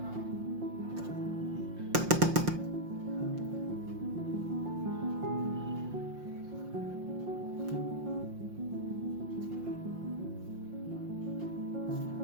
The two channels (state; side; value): late; left; 5.7 ms